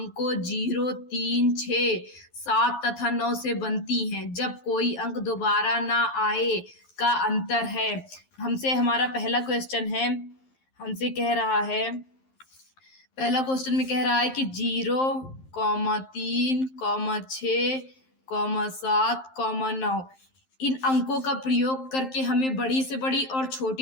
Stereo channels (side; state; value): right; late; 11 ms